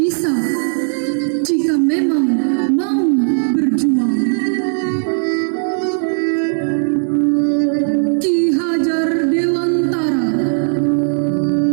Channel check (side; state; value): left; silent; digital silence